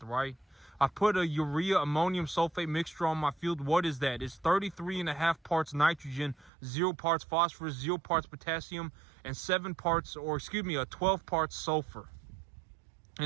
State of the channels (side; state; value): left; drops out; at 6.5 s